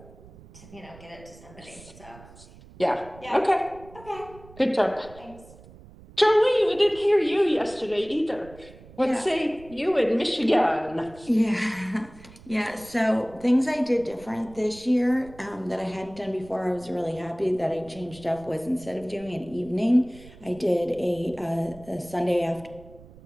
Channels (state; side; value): noise; right; rumble, 21 dB below the sound